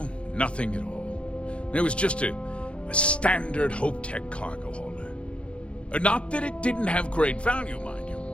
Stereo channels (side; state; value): right; late; 0.059 ms